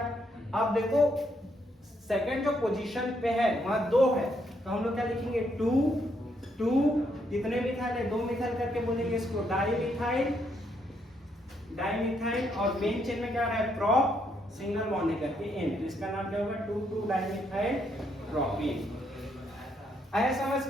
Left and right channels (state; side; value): normal; both; correlation 0.75